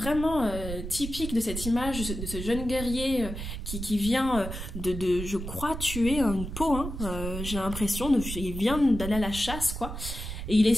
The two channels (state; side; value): noise; right; rumble, 7 dB below the sound